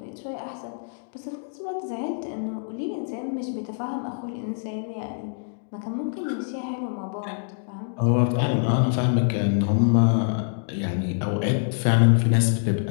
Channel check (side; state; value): right; silent; digital silence